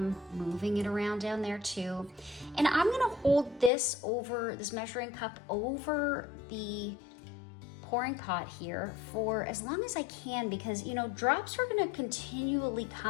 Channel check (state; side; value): drops out; right; at 3.7 s